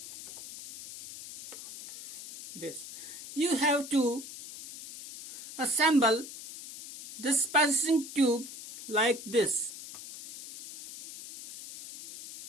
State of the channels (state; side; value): noise; left; hiss, 13 dB below the sound